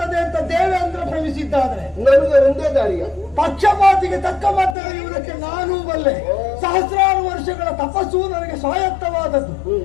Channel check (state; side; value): drops out; right; at 4.8 s